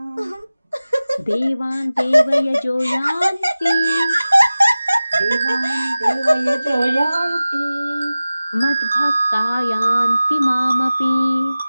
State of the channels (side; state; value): both; inverted; correlation -0.97